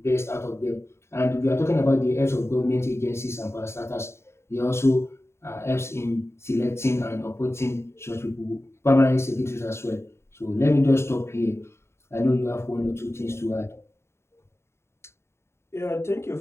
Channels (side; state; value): right; late; 0.13 ms